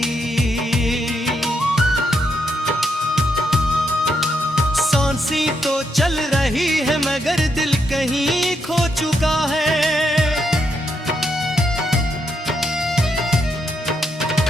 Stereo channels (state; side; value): normal; both; correlation 0.79